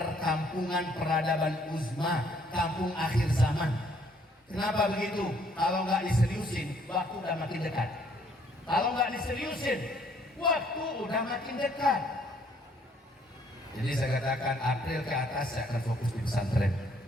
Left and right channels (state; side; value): normal; both; correlation 0.65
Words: peradaban uzma, kampung akhir zaman. Kenapa begitu? Kalau nggak diseriusin, waktu udah makin dekat. Kalau nggak diseriusin, waktu udah makin dekat. Jadi saya katakan April ke atas saya akan fokus di pesantren.